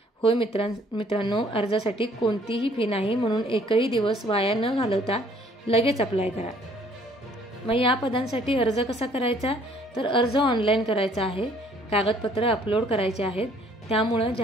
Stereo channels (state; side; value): normal; both; correlation 0.60